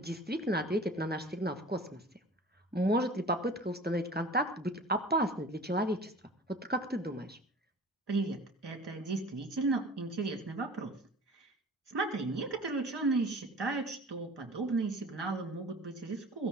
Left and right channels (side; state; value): both; normal; correlation 0.42